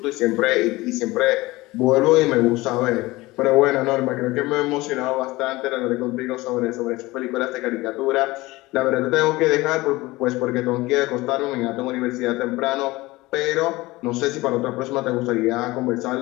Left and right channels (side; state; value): right; quieter; 20.4 dB